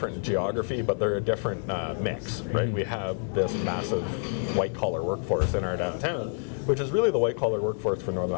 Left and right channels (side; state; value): right; silent; 55 dB below the other